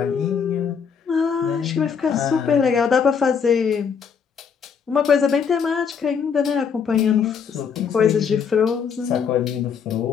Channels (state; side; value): quieter; right; 6.7 dB